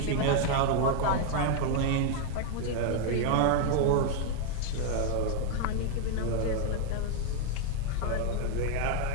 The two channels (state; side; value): different; both; correlation 0.00